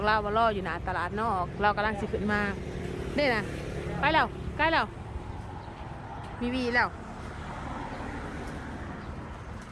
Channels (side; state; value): both; identical; correlation 1.00